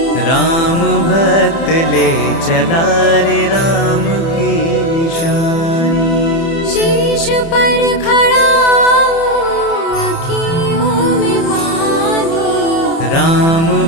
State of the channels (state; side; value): late; right; 30 ms